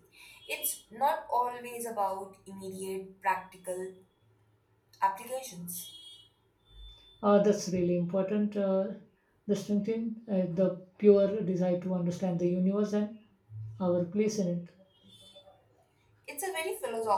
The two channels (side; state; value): both; identical; correlation 1.00